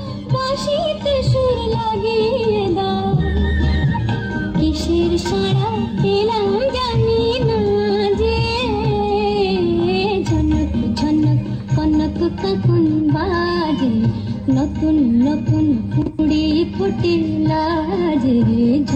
বাঁশিতে সুর লাগিয়ে দাও। কিসের সারা পেলাম জানি না যে, ঝনক ঝনক কনক কখন বাজে, নতুন নতুন কুড়ি ফুটে লাজে।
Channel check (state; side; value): identical; both; correlation 1.00